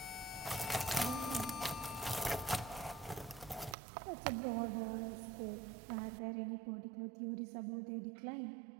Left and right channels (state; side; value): drops out; left; at 3.8 s